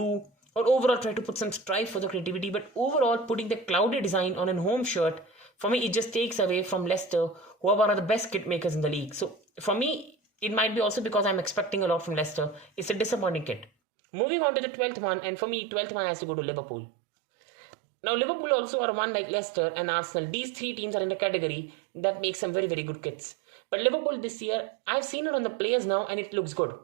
or overall try to put some stripe for the creativity. But overall, putting the cloudy design on a home shirt, for me, it just takes away from Leicester, who are one of the best kit makers in the league. So for me, it might be also because I'm expecting a lot from Leicester. It's a disappointing kit. Moving on to the 12th one, and for me, 12th one has to go to Liverpool. Now, Liverpool also are one like Leicester and Arsenal. These three teams are in a category that makes some very, very good kits. But Liverpool this year, I've seen it on the players now and it looks good.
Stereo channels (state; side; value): drops out; left; at 13.7 s